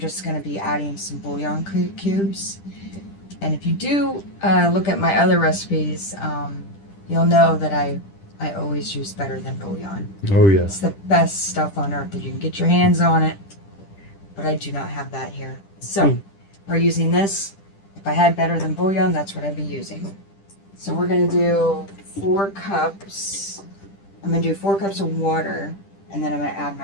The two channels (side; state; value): right; late; 10 ms